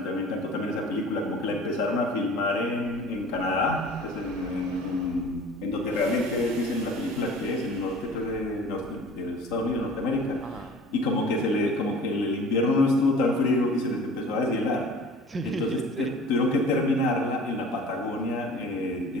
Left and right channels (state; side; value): normal; both; correlation 0.44